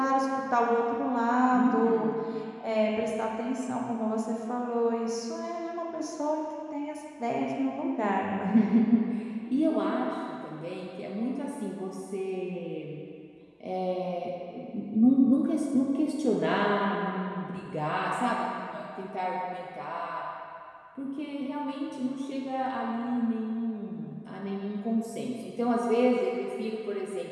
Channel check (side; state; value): both; identical; correlation 1.00